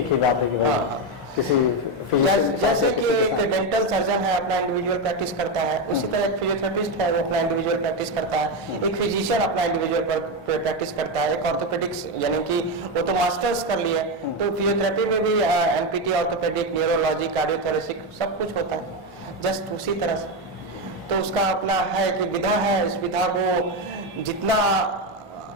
ही बात है कि हाँ, किसी जैसे कि एक डेंटल सर्जन है अपना इंडिविजुअल प्रैक्टिस करता है, उसी तरह एक फिजियोथेरेपिस्ट है वो अपना इंडिविजुअल प्रैक्टिस करता है, एक फिजिशियन अपना इंडिविजुअल प्रैक्टिस करता है, एक ऑर्थोपेडिक्स यानी कि वो तो मास्टर्स कर लिए, तो फिजियोथेरेपी में भी MPT, ऑर्थोपेडिक, न्यूरोलॉजी, कार्डियोथोरेसिक सब कुछ होता है जस्ट उसी तरह से। तो उसका अपना है कि विधा है, इस विधा को जितना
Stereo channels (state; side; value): normal; both; correlation 0.10